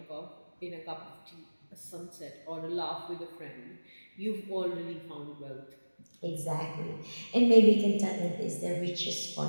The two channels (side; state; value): both; inverted; correlation -1.00